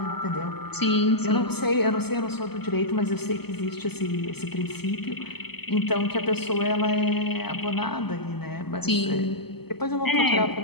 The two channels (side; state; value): right; late; 0.97 ms